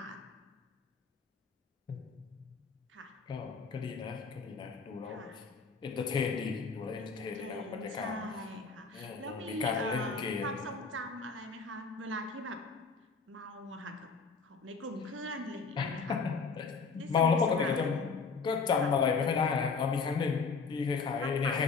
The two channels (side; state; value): right; quieter; 4.9 dB